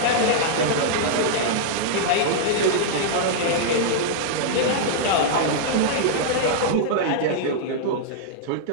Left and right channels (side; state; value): both; different; correlation -0.02